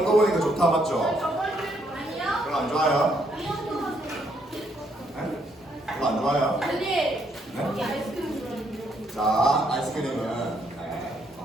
또 보니까 좋다 맞죠? 별로 안 좋아요? 네? 별로 안 좋아요? 네? 자, 아이스크림은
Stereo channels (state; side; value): normal; both; correlation 0.72